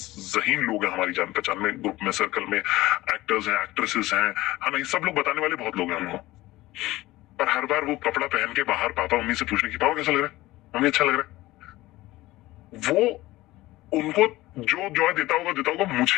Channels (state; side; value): quieter; right; 18.0 dB